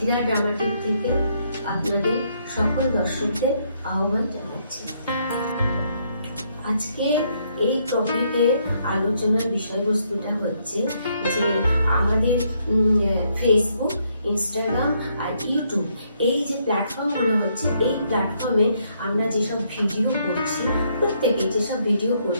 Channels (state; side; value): inverted; both; correlation -0.72